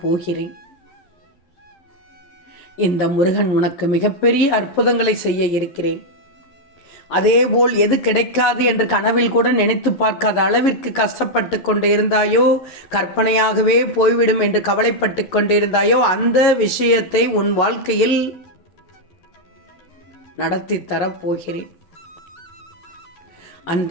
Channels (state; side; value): late; right; 11 ms